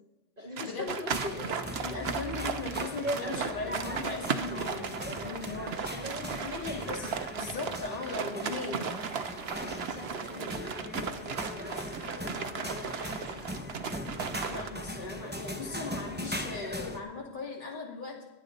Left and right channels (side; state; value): both; normal; correlation 0.05